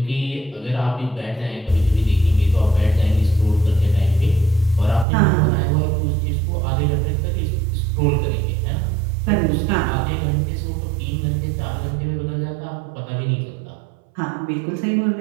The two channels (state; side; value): drops out; left; at 5.1 s